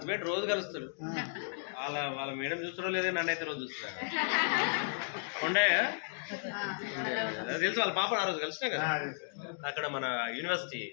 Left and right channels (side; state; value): right; silent; digital silence